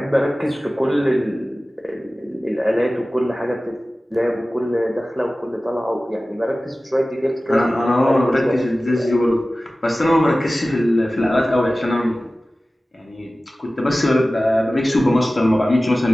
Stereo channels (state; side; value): normal; both; correlation 0.96